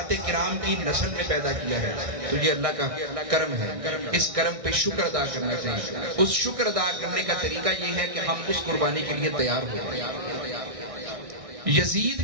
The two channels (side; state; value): left; late; 1.6 ms